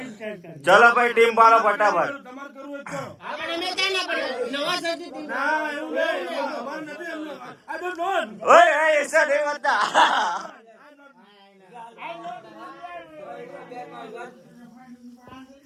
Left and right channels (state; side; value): identical; both; correlation 1.00